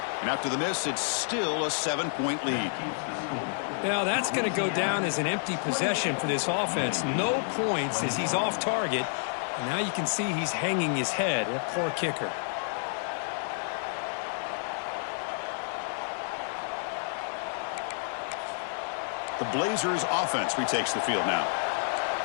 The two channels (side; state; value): right; silent; 58 dB below the other